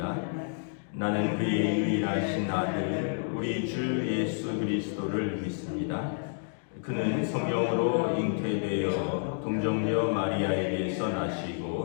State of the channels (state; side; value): silent; right; digital silence